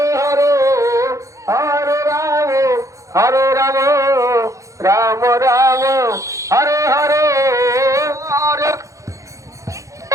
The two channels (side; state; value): left; late; 0.15 ms